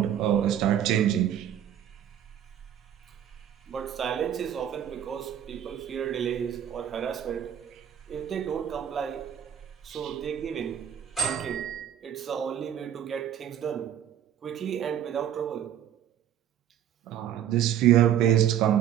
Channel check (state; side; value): quieter; left; 10.2 dB